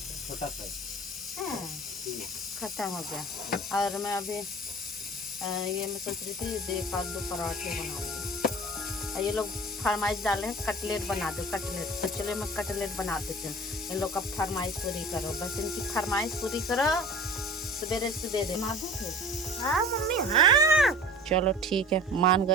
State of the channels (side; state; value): both; normal; correlation 0.41